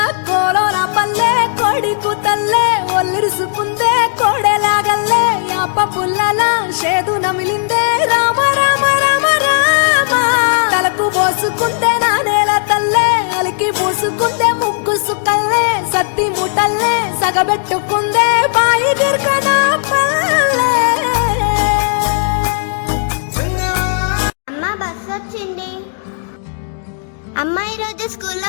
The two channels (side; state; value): right; silent; digital silence